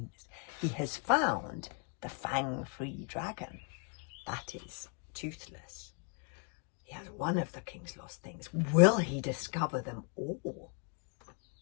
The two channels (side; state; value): right; quieter; 37.2 dB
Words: He has found the fang-free dragon. That is Toothless. He has one of the king's lost things. Will he discover them all?